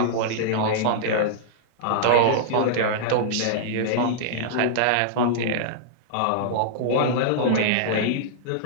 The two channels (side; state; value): both; different; correlation -0.02